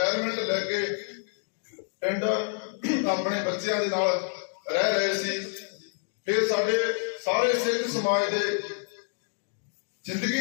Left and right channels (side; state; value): right; silent; 59 dB below the other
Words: ਲੈ ਕੇ ਪਿੰਡ ਆਪਣੇ ਬੱਚਿਆਂ ਦੇ ਨਾਲ ਰਹਿ ਰਹੇ ਸੀ। ਫਿਰ ਸਾਡੇ ਸਾਰੇ ਸਿੱਖ ਸਮਾਜ ਦੇ